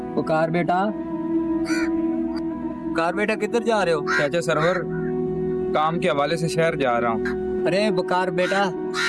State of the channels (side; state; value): both; identical; correlation 1.00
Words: पुकार बेटा, पुकार बेटा, किधर जा रहे हो? चाचा सरवर, काम के हवाले से शहर जा रहा हूँ। अरे बुकार बेटा,